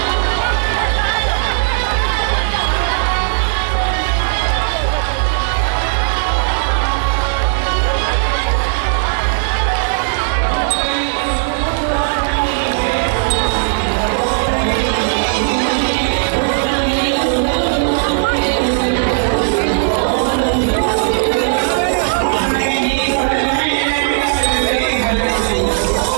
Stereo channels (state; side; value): silent; left; digital silence